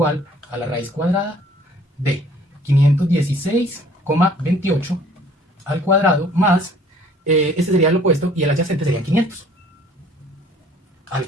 a la raíz cuadrada de 516,28 al cuadrado más, este sería el opuesto y el adyacente sería 500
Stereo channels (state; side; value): normal; both; correlation 0.55